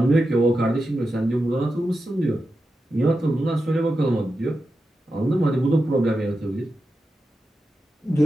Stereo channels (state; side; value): normal; both; correlation 0.90